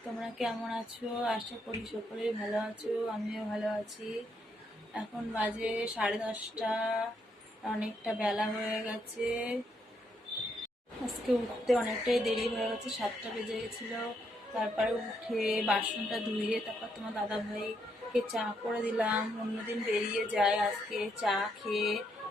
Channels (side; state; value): both; normal; correlation 0.76